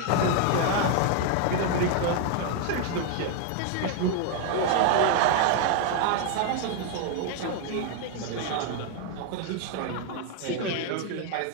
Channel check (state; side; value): different; both; correlation 0.00